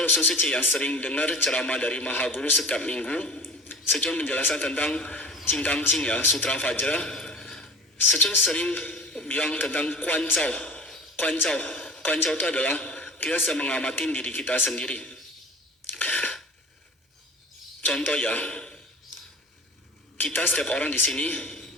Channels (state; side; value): normal; both; correlation 0.39